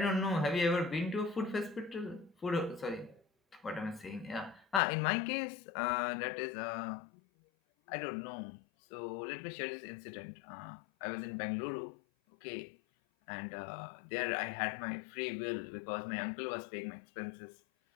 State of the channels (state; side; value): drops out; right; at 4.8 s